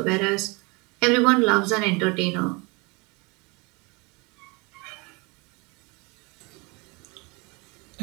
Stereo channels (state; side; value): quieter; left; 27.8 dB